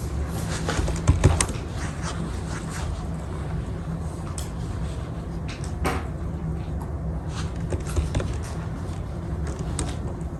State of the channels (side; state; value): both; identical; correlation 1.00